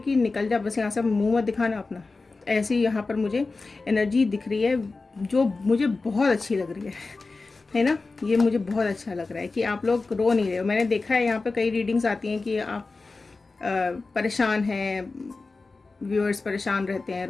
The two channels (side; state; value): right; quieter; 3.8 dB